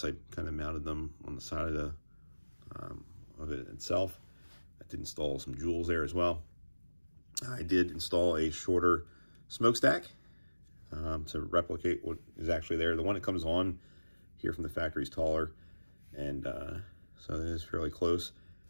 I kind of mounted them on the side of it itself. I did install some jewels there as well. I did install a shorter smokestack to replicate what is actually there. The one that comes on here from the factory is taller, and so it is fairly close.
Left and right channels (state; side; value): inverted; both; correlation -1.00